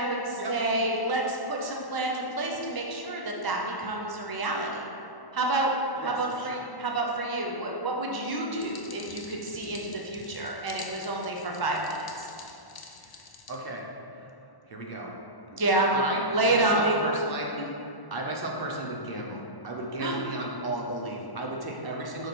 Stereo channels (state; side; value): late; right; 1.1 ms